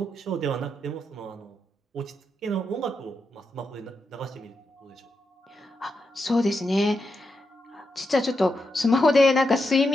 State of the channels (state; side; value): normal; both; correlation 0.85